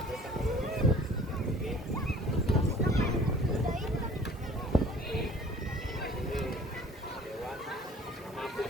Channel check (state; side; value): normal; both; correlation 0.50